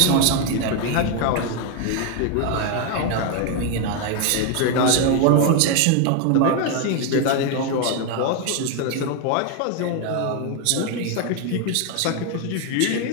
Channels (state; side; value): different; both; correlation 0.01